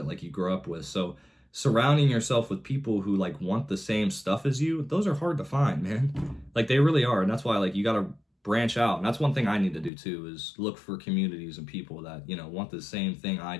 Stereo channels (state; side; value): drops out; right; at 9.9 s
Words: like, you grew up with. So surrounding yourself with people who like want the same stuff as you, those are hard to find, man. Like, they really are. And that's why, like, you got to branch out. And that's one thing I need to do too, is look for communities and people that want the same thing I